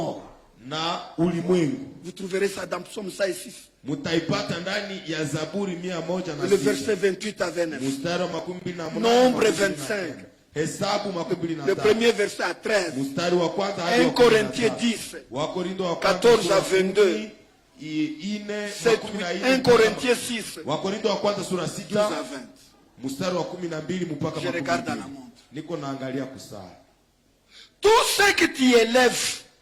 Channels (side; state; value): both; identical; correlation 1.00